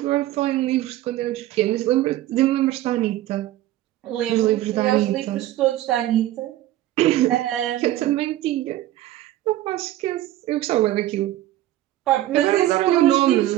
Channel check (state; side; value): quieter; left; 14.5 dB